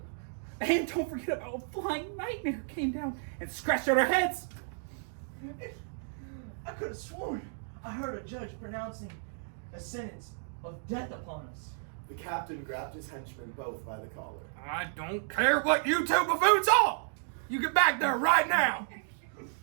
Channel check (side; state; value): left; silent; digital silence